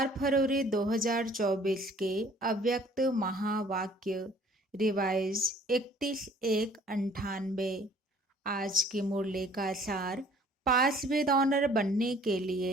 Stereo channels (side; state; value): both; normal; correlation 0.55